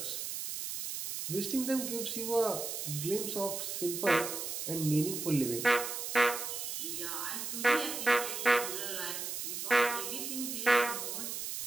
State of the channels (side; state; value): right; noise; hiss, 4 dB below the sound